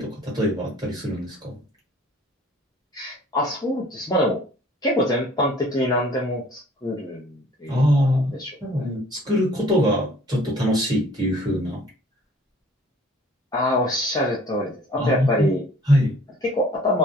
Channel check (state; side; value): normal; both; correlation 0.53